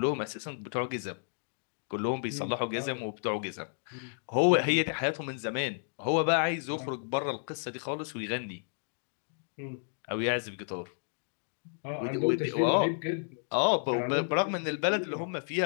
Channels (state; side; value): silent; right; digital silence